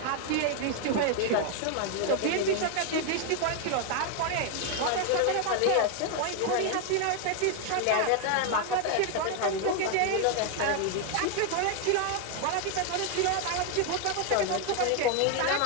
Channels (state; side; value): different; both; correlation 0.01